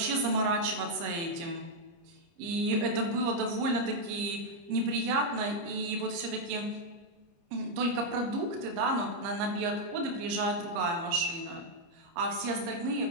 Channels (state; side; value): late; left; 29 ms